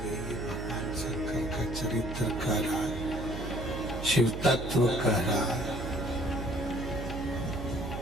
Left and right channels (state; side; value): noise; right; hum, 7 dB below the sound